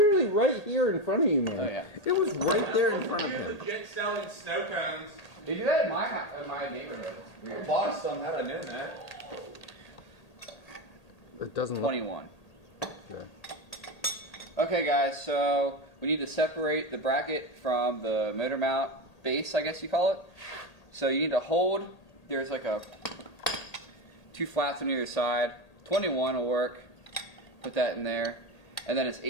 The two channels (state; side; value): late; right; 1.8 ms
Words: right here in front of you, man. Oh, yeah. It was right there in front of him. Legit selling snow cones. They do that in my neighborhood. I bought some, had I known that. It doesn't look 21. good. Okay, guys, so we need to separate the bracket from the motor mount base, I guess you call it. So you need to hold, there's like 2 flats on either side. 21 will work. Put that in there. And then it's